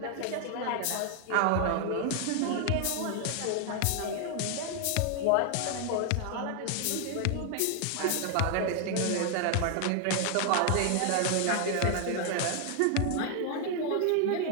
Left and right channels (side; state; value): both; different; correlation 0.00